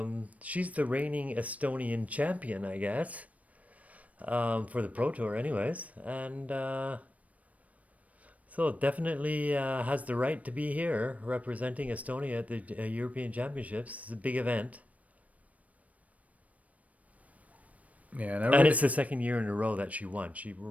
she's the reigning Estonian champion, I guess, for the Pro Tour anyways. And so definitely has the right to be here representing Estonia at the European Championships. It's a big event. Yeah, And it's the second year in a row that she won. She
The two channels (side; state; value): left; late; 0.068 ms